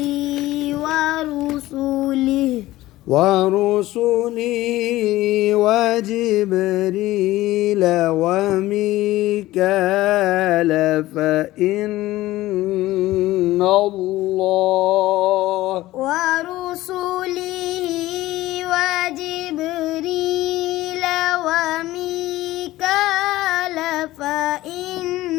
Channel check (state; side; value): quieter; right; 16.8 dB